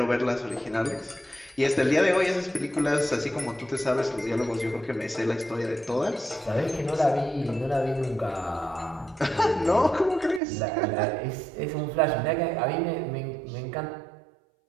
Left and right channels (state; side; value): drops out; left; at 10.4 s